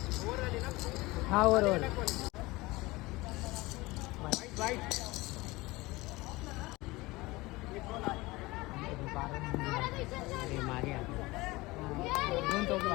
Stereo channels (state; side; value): quieter; right; 21.4 dB